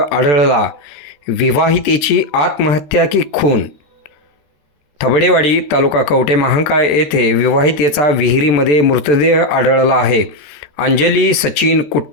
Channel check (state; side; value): late; right; 14 ms